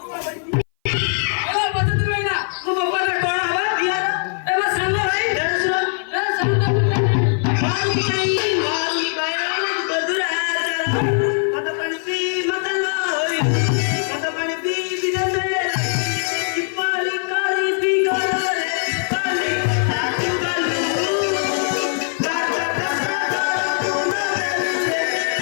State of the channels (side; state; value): right; silent; 60 dB below the other